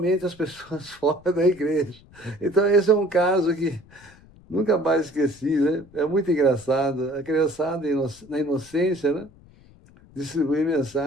as pessoas fora da igreja. Então, esse é um caso que nunca mais esqueci, né? É muito engraçado. A criançada, na inocência, né? Distribuir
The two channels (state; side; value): noise; left; rumble, 25 dB below the sound